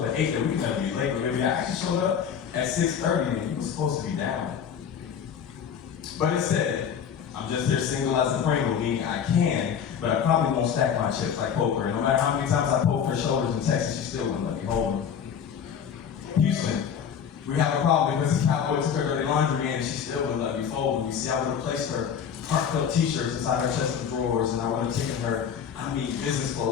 at 8 that we could never be late, but I actually showed up at 6:30 and you were supposed to be down. But instead, I'm just here single as a Pringle, meaning I can, but I probably won't stack my chips like poker. And no matter how many times I poke her shoulders in Texas, she still wouldn't let me hold them. Houston, we have a problem because this cowboy took her dirty laundry in and she still wouldn't let me fold them. You see, I would have placed her parked up t-shirts inside her chest of drawers, and I would have taken her business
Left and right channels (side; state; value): right; quieter; 7.8 dB